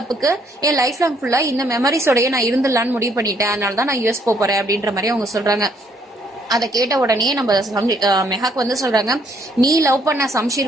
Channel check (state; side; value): normal; both; correlation 0.68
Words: என் லைஃப் லாங் ஃபுல்லா இந்த மெமரிஸோடய நான் இருந்துடலான்னு முடிவு பண்ணிட்டேன், அதனாலதான் நான் US போறேன் அப்படின்ற மாதிரி அவங்க சொல்றாங்க. அதை கேட்ட உடனே நம்ம மெஹாக் வந்து சொல்றாங்க, நீ லவ் பண்ண சம்ஷீர்